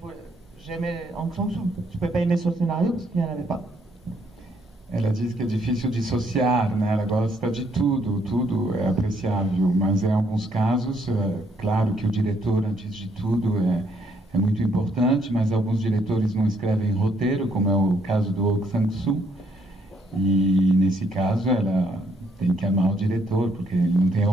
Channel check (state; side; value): normal; both; correlation 0.70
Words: j'aimais Hong Sang-soo. Je ne pouvais pas aimer son scénario parce qu'il n'y en avait pas. Ela diz que é difícil dissociar, né? Ela gosta de tudo, tudo é apreciável, mas em alguns casos, claro que o diretor, antes de tudo, é muito importante, mas alguns diretores não escrevem roteiro, como é o caso do Hong Sang-soo, e nesse caso ela tem que amar o diretor, porque ele não tem